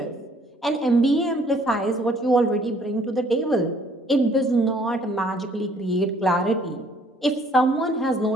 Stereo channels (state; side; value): normal; both; correlation 0.61